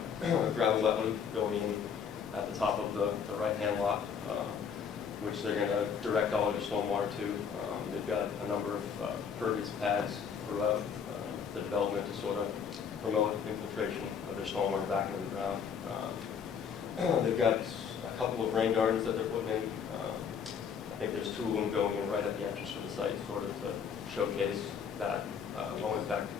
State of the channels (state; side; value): quieter; right; 7.0 dB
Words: gravel wetland going in at the top of the right-hand lot, which they're going to direct all of their stormwater to. They've got a number of pervious pads throughout the development to sort of promote infiltration of their stormwater back into the ground. They've got a couple of rain gardens that they're putting in. I think there's 2 of them going in right at the entrance to the site, sort of to showcase that low impact